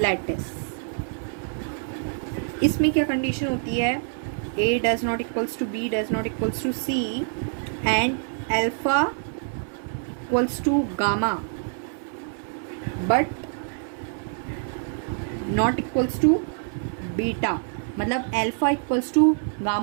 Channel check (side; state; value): left; silent; 61 dB below the other